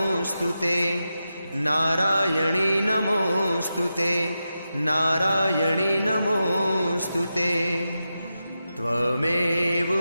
नारायणी नमोऽस्तुते नारायणी नमोऽस्तुते। त्वमेव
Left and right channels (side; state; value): both; inverted; correlation -0.90